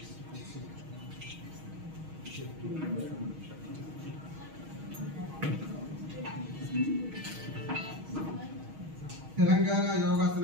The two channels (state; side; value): late; left; 6.4 ms